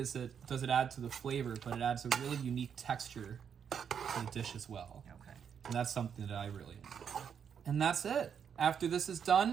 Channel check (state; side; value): quieter; left; 7.6 dB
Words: it add to the flavor, but it adds a really unique texture to the dish as well. Okay. And that's something that I really enjoy. And that's it. After this is